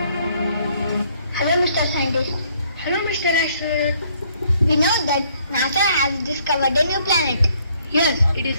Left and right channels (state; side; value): inverted; both; correlation -0.66